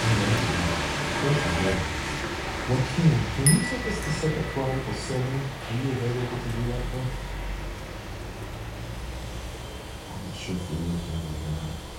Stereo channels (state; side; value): identical; both; correlation 1.00